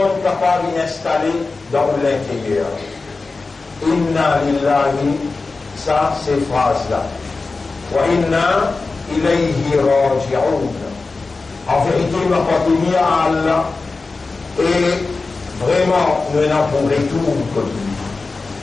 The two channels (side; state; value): right; quieter; 3.9 dB